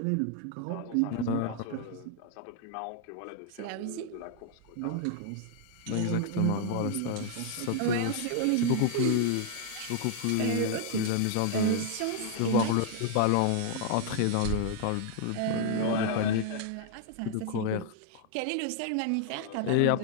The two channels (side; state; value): both; different; correlation 0.00